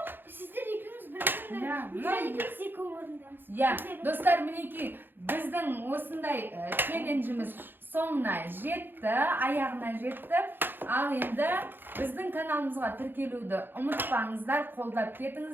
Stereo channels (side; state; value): left; late; 0.097 ms